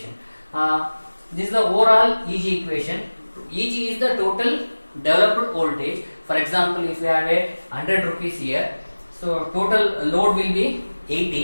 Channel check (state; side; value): inverted; both; correlation -1.00